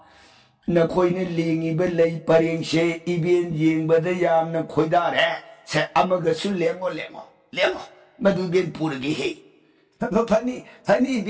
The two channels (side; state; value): both; identical; correlation 1.00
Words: na khoi ne lengi ba lei paring se ibien yeng ba da yam na khoi da re se amaga su lengo madu bien puragi he hani